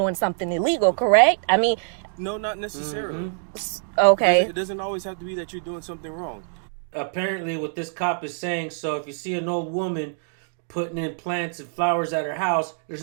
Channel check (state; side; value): silent; left; digital silence